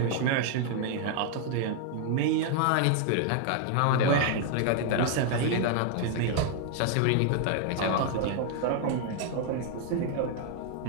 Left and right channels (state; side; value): different; both; correlation 0.00